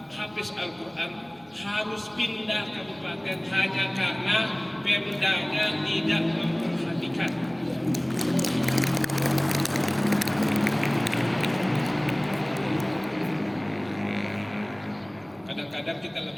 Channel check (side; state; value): right; noise; rumble, 30 dB below the sound